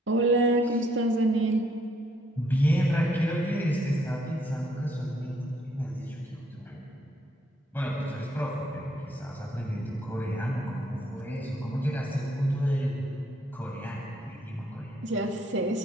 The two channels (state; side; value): normal; both; correlation 0.69